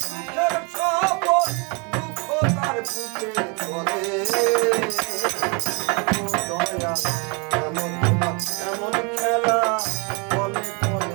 সুখের স্বপন, দুঃখ তার বুকে চলে, ও দয়া কেন তোমার এমন খেলা বলে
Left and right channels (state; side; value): quieter; left; 32.5 dB